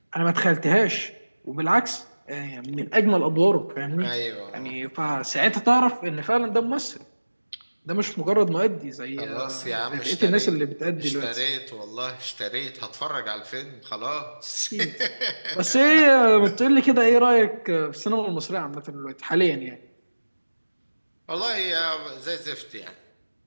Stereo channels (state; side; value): inverted; both; correlation -1.00